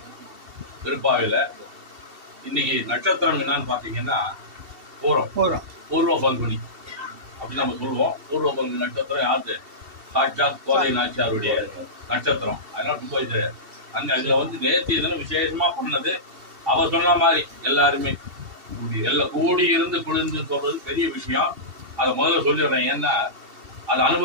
திருப்பாவையில. இன்னைக்கு நட்சத்திரம் என்னன்னு பாத்தீங்கன்னா பூர்வ பங்குனி அப்படி நம்ம சொல்லுவோம். பூர்வ பங்குனி நட்சத்திரம் யாரு? சாட்சாத் கோதை நாச்சியாருடைய நட்சத்திரம். அதனால ரொம்ப இது அதுல நேற்று இதெல்லாம் விசேஷமா பண்ணது. அவர் சொன்ன மாதிரி எல்லாருமே எல்லாம் கூடி இருந்து குளிர்ந்து சொல்றது பெரிய விஷயம். அதை முதல்ல சொல்லிடுறேன். ஏன்னா அதை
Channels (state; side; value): late; left; 2.7 ms